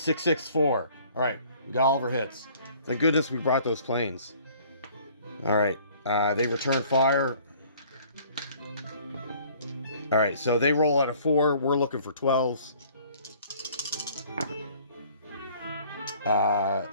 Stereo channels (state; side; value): inverted; both; correlation -0.55